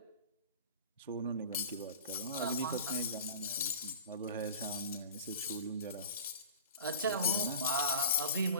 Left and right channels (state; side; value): inverted; both; correlation -0.36